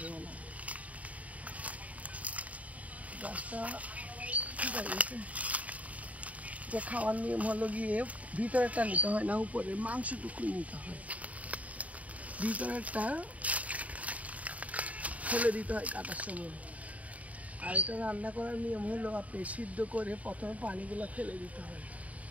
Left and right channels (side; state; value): left; late; 0.069 ms